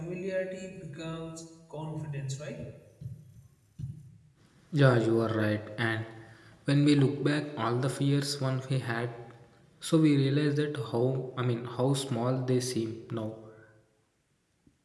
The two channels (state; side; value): identical; both; correlation 1.00